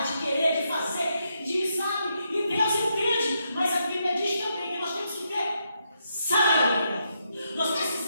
de querer, de fazer, de sabe, e Deus entende, mas a Bíblia diz também que nós temos que ter sabedoria. Nós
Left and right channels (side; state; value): both; inverted; correlation -0.80